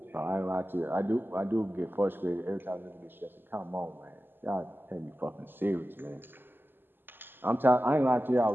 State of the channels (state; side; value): late; left; 0.096 ms